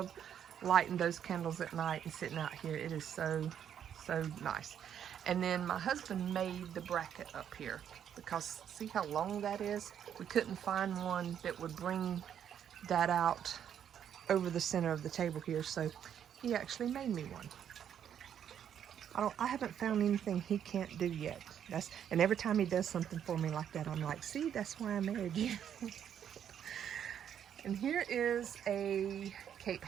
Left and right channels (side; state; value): left; quieter; 9.1 dB